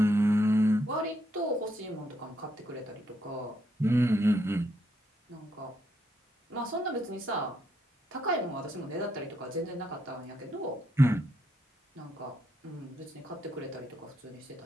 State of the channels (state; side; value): normal; both; correlation 0.76